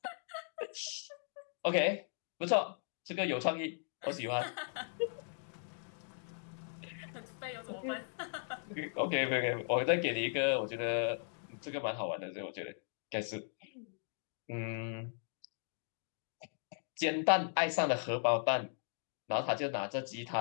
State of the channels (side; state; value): right; silent; digital silence